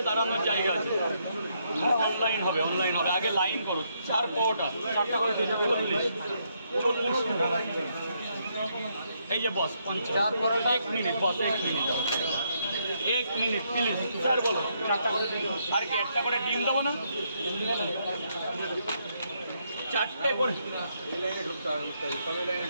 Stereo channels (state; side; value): inverted; both; correlation -0.75